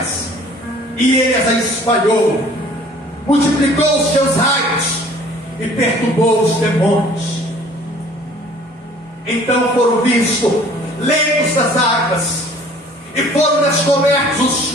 e ele as espalhou, multiplicou os seus raios e perturbou os demônios. Então foram vistos leitos das águas, e foram descobertos os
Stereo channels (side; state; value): both; normal; correlation 0.52